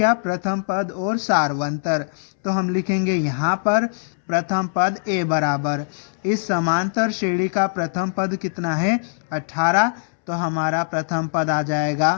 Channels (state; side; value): silent; right; 64 dB below the other